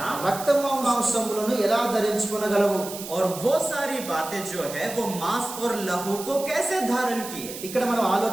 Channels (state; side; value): noise; right; hiss, 11 dB below the sound